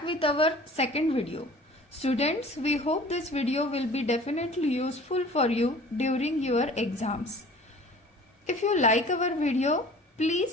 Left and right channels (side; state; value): both; normal; correlation 0.46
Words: with our second video. Students, we hope this video will be definitely useful for you during your exams. If you like our video,